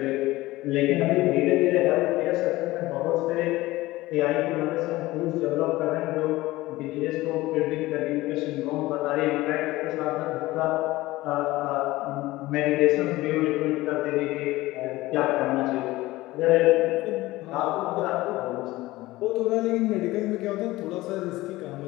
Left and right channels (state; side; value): quieter; right; 18.4 dB